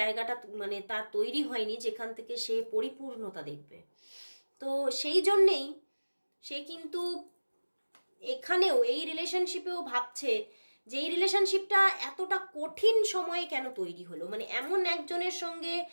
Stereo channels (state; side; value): inverted; both; correlation -1.00